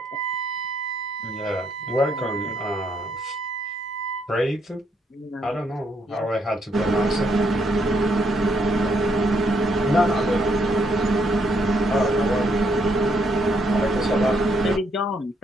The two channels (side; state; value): both; normal; correlation 0.74